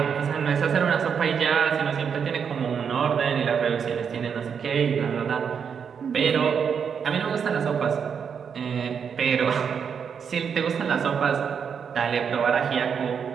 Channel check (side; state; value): left; quieter; 6.9 dB